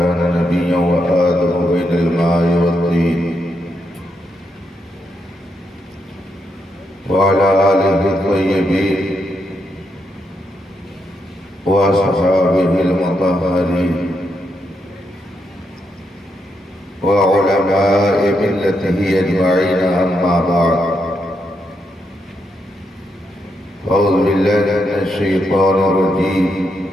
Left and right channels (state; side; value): normal; both; correlation 0.81